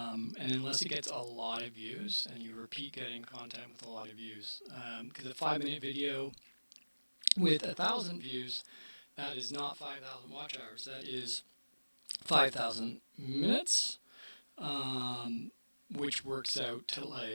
unless it gets a lot of views, and you repeat getting content with a lot of views, because a 5 minute video with 1,000 views, that is not 5,000 watch hours. That is 5,000 minutes, which works out to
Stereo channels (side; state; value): both; inverted; correlation -1.00